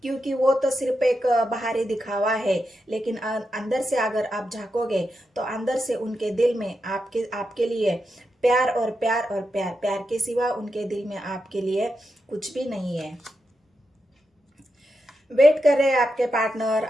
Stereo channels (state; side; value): normal; both; correlation 0.87